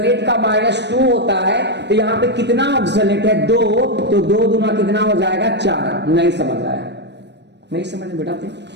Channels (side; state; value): left; late; 0.50 ms